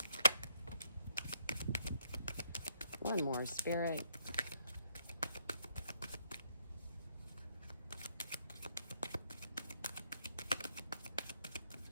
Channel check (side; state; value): both; inverted; correlation -0.72